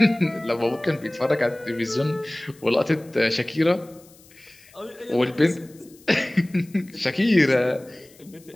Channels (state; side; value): noise; left; hiss, 26 dB below the sound